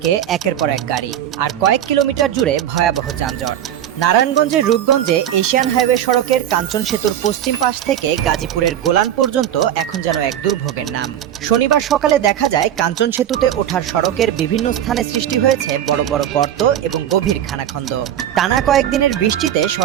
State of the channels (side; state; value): left; quieter; 10.7 dB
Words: একের পর এক গাড়ি, আর কয়েক কিলোমিটার জুড়ে ভয়াবহ যানজট। নারায়ণগঞ্জের রূপগঞ্জে এশিয়ান হাইওয়ে সড়কের কাঞ্চন সেতুর পশ্চিম পাশ থেকে গাজীপুরের গোলান পর্যন্ত এখন যেন এক দুর্ভোগের নাম। শনিবার সকালে দেখা যায় কাঞ্চন সেতুতে ওঠার সড়কের বিভিন্ন স্থানে সৃষ্টি হয়েছে বড় বড় গর্ত এবং গভীর খানাখন্দ। টানা কয়েকদিনের বৃষ্টিতে